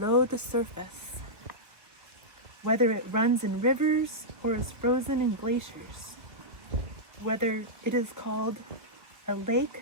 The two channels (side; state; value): left; late; 1.2 ms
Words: the surface, whether it runs in rivers or is frozen in glaciers, whether it is called a lake